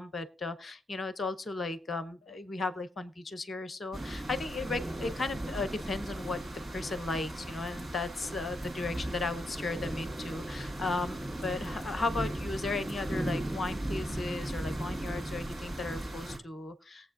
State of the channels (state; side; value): normal; both; correlation 0.82